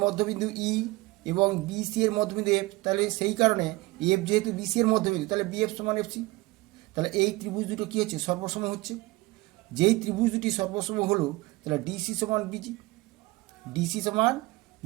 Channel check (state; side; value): quieter; left; 21.5 dB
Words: মধ্যবিন্দু ই এবং বিসি এর মধ্যবিন্দু এফ, তাহলে সেই কারণে এফ যেহেতু বিসি এর মধ্যবিন্দু, তাহলে বিএফ সমান এফসি। তাহলে এই ত্রিভুজ দুটো কী হচ্ছে, সর্বসম হচ্ছে। যেই ত্রিভুজ দুটি সর্বসম হলো, তাহলে ডিসি সমান বিজি, ডিসি সমান